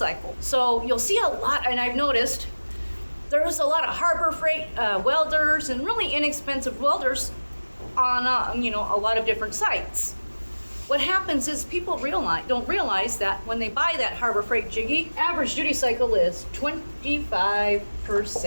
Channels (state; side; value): inverted; both; correlation -1.00